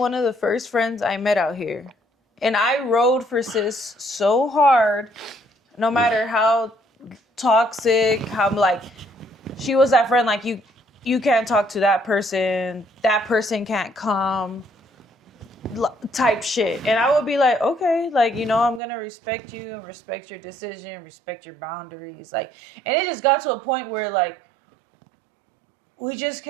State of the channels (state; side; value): drops out; left; at 18.8 s